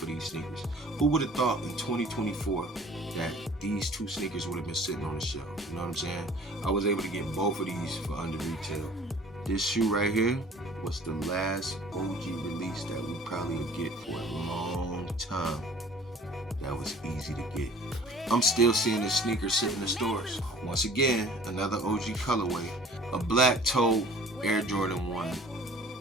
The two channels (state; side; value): normal; both; correlation 0.49